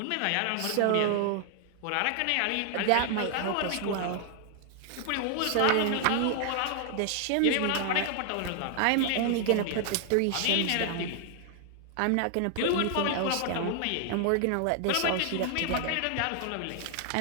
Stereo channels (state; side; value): different; both; correlation 0.00